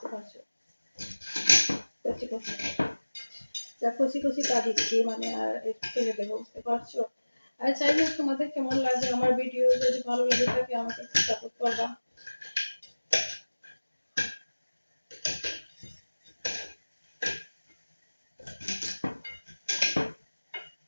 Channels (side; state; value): both; inverted; correlation -1.00